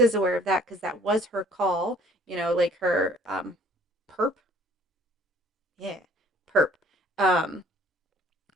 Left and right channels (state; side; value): normal; both; correlation 0.55